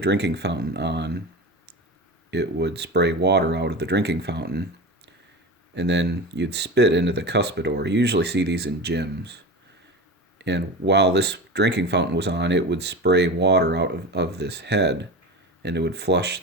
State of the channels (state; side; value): normal; both; correlation 0.28